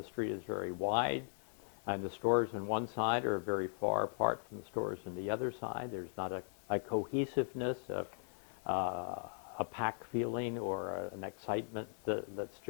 street is very wide and the stores on one side are very far apart from the stores on the other side. There's not a cohesiveness, a pack feeling or an excitement that's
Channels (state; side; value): silent; right; digital silence